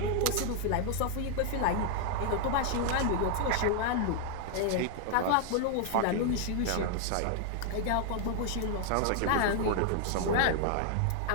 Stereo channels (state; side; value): different; both; correlation 0.00